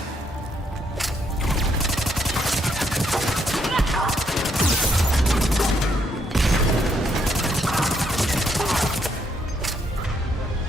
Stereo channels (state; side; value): normal; both; correlation 0.74